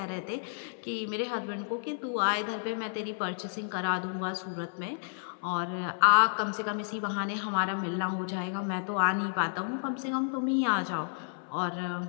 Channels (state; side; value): silent; right; 57 dB below the other